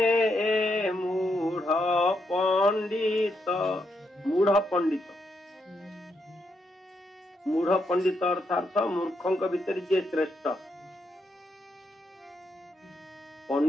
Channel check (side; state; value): both; normal; correlation 0.80